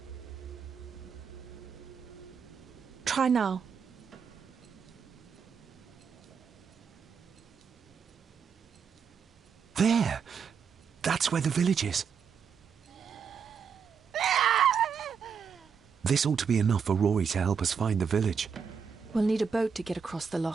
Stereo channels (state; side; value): quieter; left; 6.5 dB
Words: Try now. There! That's where the village is. This ought to be enough for Rory to help us find the village. We'll need a boat to get across the